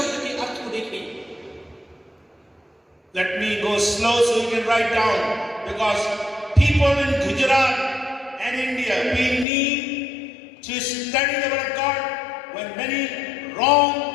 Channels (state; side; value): drops out; right; at 9.5 s